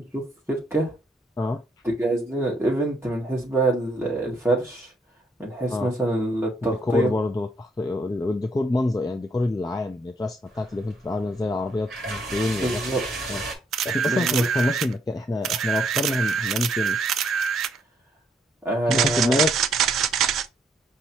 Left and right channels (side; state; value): both; normal; correlation 0.71